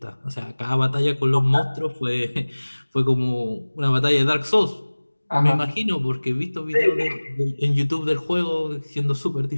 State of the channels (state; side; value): inverted; both; correlation -1.00